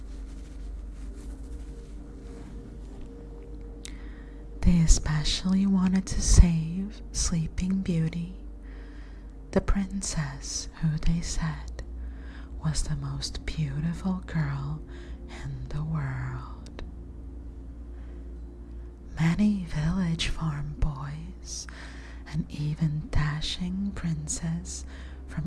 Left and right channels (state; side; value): identical; both; correlation 1.00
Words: They especially wanted to save Sleeping Beauty, the princess who they said was the most beautiful girl in the world. Many village farm boys and even dashing princes